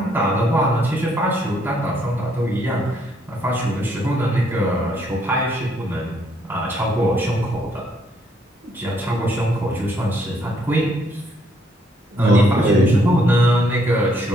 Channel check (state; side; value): normal; both; correlation 0.69